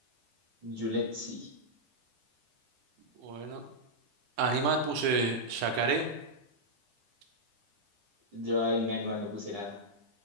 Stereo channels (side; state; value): left; late; 10 ms